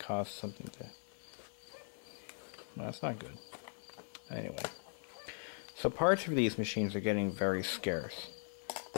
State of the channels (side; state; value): right; silent; 51 dB below the other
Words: something to... No, that's not good. Anyway. So parts for these machines are getting very scarce.